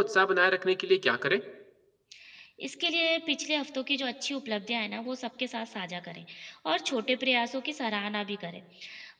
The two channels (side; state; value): both; identical; correlation 1.00